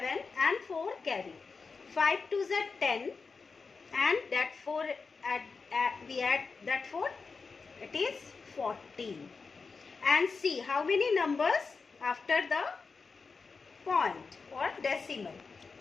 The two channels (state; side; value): quieter; right; 4.7 dB